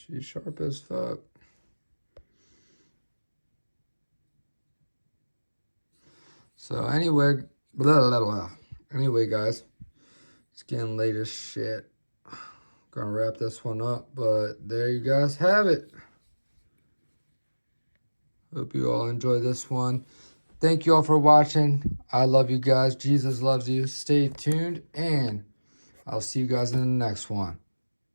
She's sharp as fuck. So anyway, anyway, guys, it's getting late as shit. Gonna wrap this one up, but there you guys have it. Hope you all enjoy this one. Thank you all for watching. I love you guys. Jesus loves you. Stay tuned, and I'll see you guys in the next one.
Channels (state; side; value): inverted; both; correlation -1.00